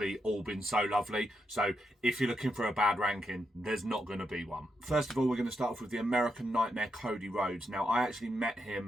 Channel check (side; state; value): both; normal; correlation 0.83